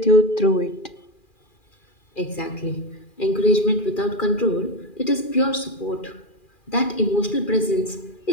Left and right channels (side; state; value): right; late; 2.4 ms